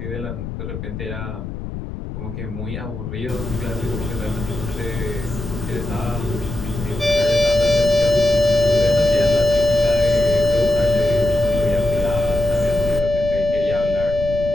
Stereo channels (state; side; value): noise; left; rumble, 8 dB below the sound